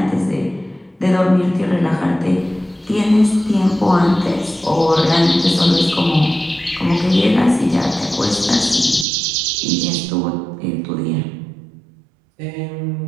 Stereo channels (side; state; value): left; drops out; at 9.1 s